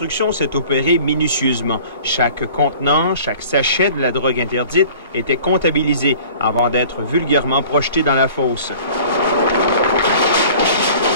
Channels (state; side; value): inverted; both; correlation -0.47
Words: s'est opérée minutieusement. Chaque contenant, chaque sachet de la drogue interdite était comptabilisé avant d'être vulgairement projeté dans la fosse.